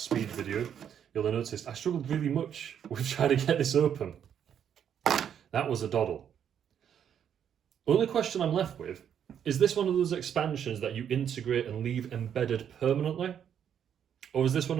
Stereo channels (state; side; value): quieter; left; 8.8 dB